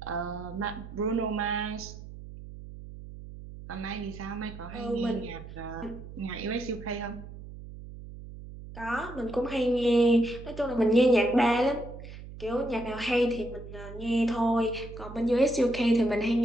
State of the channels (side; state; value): right; noise; hum, 13 dB below the sound